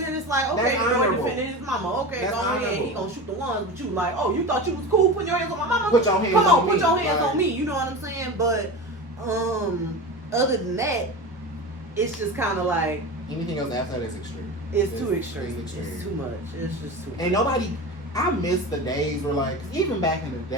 it's like, okay, the boy defending his mama. Okay, go ahead. He going to shoot the ones, but you like, oh, you thought you was cool putting your hands on my mama? Put your hands on me. Come on, put your hands on me. You know what I'm saying? But, other than that, it's just kind of like, anything else after that is extreme. It's too extreme. It's too much. It's just too much. And nobody, I miss the days where, like, even back in the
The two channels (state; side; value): normal; both; correlation 0.28